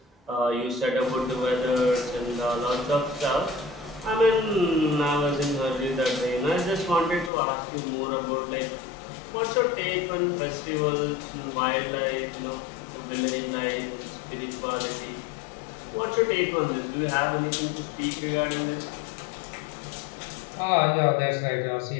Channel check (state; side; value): drops out; right; at 7.3 s